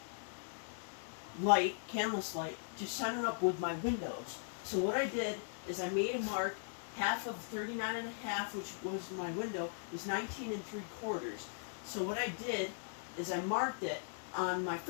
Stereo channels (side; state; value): right; silent; digital silence